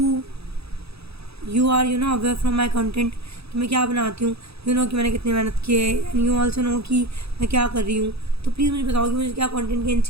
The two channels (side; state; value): left; late; 0.78 ms